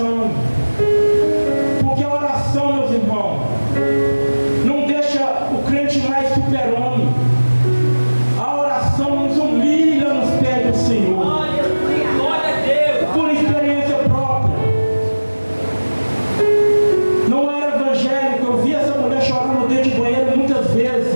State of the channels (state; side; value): inverted; both; correlation -1.00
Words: Porque a oração, meus irmãos, não deixa o crente mais super-homem. A oração nos humilha nos pés do Senhor.